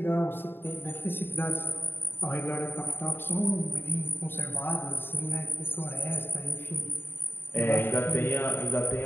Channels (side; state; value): right; late; 0.10 ms